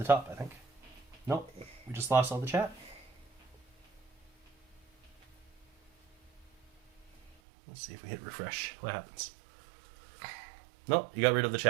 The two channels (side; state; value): left; drops out; at 7.4 s